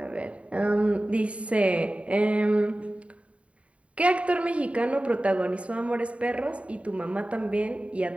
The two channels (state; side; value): late; left; 0.064 ms